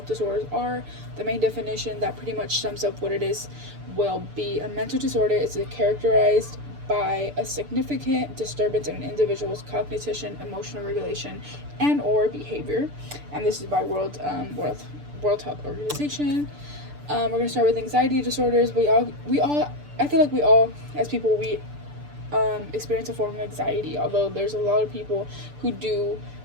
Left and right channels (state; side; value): late; left; 6.8 ms